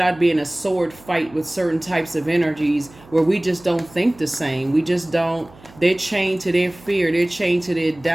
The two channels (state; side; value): noise; right; hum, 24 dB below the sound